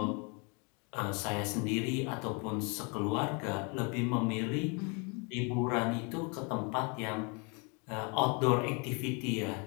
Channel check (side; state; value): right; quieter; 32.6 dB